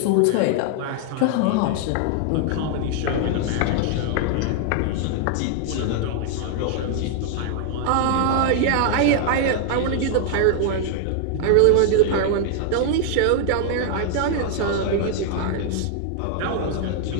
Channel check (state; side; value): different; both; correlation 0.00